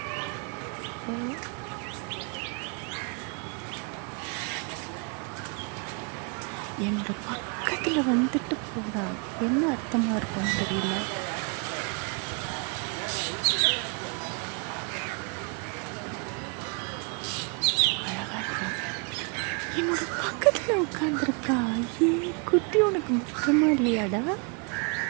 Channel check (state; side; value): quieter; left; 34.6 dB